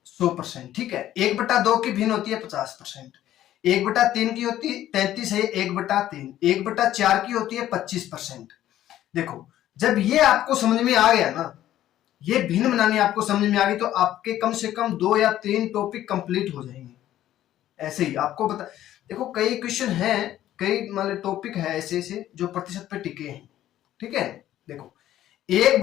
100%। ठीक है, एक बटा दो की भिन्न होती है 50%। एक बटा तीन की होती है 33 है, एक बटा तीन। एक बटा चार की होती है 25%। देखो, जब ये आपको समझ में आ गया ना, ये भिन्न बनानी आपको समझ में आ गई, तो आपके कम से कम 2 या 3 टॉपिक कंप्लीट हो जाएंगे। ऐसे ही आपको बता, देखो कई क्वेश्चन हैं, कई मतलब टॉपिक है ऐसे ऐसे जो प्रतिशत पे टिके हैं। ठीक है, देखो,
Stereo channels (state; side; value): quieter; right; 12.8 dB